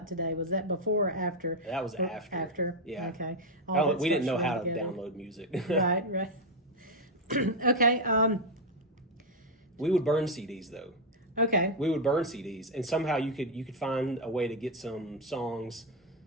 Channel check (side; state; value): both; normal; correlation 0.03